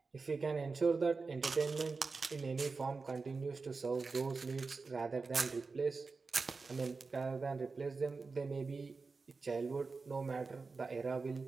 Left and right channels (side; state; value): left; quieter; 4.3 dB